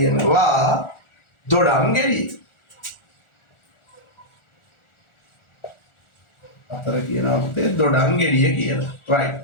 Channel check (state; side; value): late; right; 1.4 ms